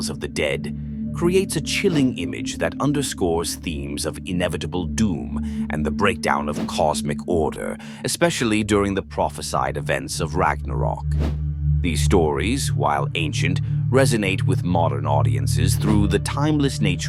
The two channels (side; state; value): both; identical; correlation 1.00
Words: of the dead, creates a chilling image that underscores themes of inevitable doom and the breakdown of cosmic order, especially during the prophesied events of Ragnarok. These stories, while ancient, resonate with modern audiences through the timeless